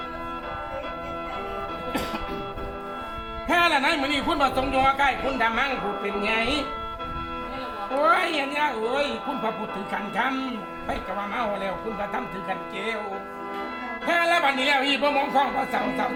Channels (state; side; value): identical; both; correlation 1.00